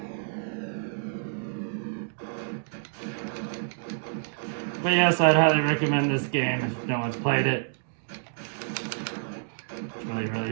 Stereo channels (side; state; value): left; silent; digital silence